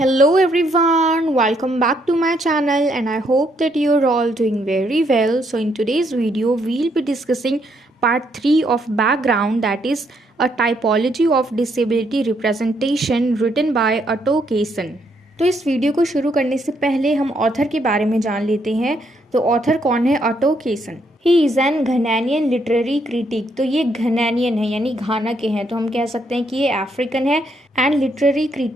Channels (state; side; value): normal; both; correlation 0.73